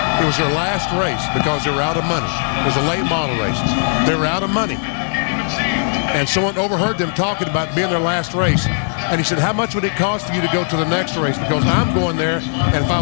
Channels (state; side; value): silent; right; digital silence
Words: It was their last race because they were out of money. It was a late model race. They were out of money. And someone overheard them talking about being their last race. And he said, how much would it cost for you to go to the next race? Because I'm going there, and if I